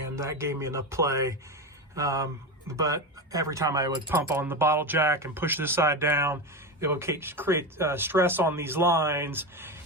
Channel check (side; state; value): both; normal; correlation 0.18